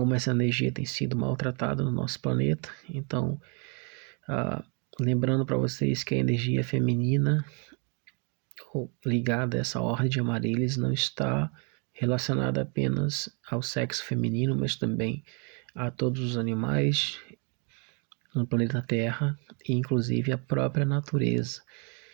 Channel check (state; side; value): quieter; left; 36.2 dB